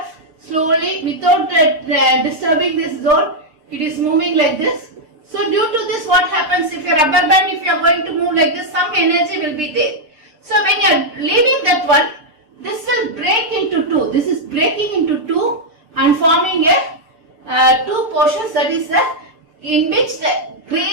slowly without disturbing this zone, it is moving like this. So due to this, what happens if your rubber band, if you are going to move like this, some energy will be there. So when you are leaving that one, this will break into two. This is breaking into two and forming a two portions, that is in which the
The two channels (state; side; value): late; left; 6.6 ms